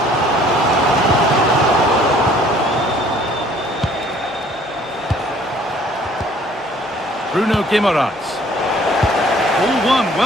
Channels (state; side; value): normal; both; correlation 0.57